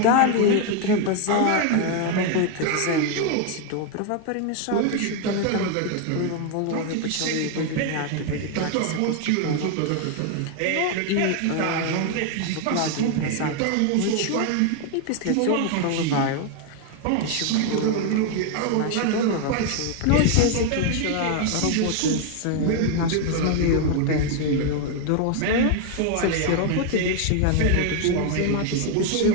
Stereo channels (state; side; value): different; both; correlation 0.01